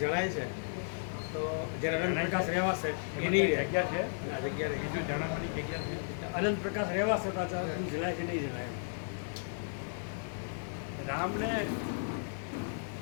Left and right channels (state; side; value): silent; right; digital silence